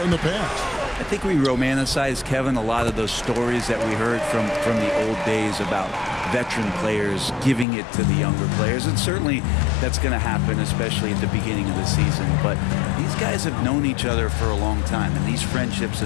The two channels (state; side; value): drops out; right; at 7.7 s